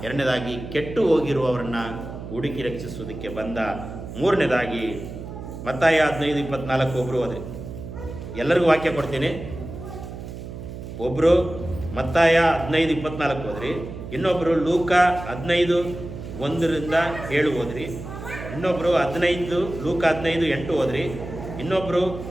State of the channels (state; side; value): noise; right; hum, 10 dB below the sound